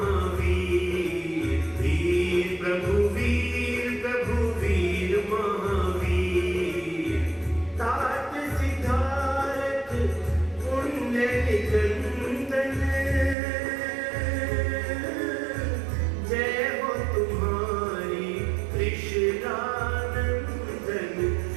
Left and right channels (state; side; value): drops out; left; at 13.4 s